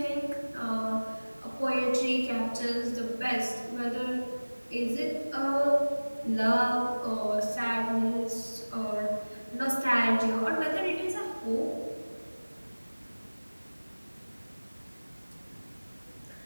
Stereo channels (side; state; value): both; inverted; correlation -1.00